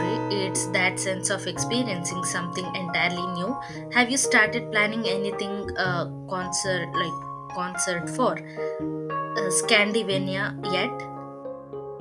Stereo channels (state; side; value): identical; both; correlation 1.00